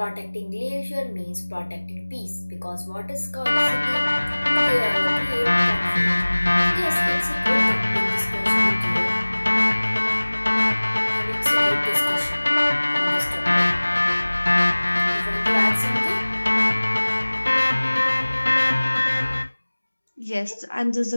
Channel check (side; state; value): both; inverted; correlation -1.00